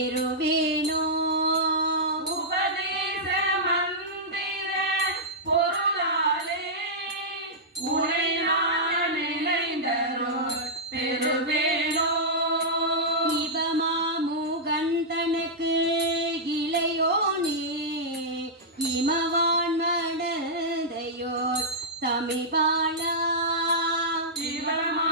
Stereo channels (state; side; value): normal; both; correlation -0.10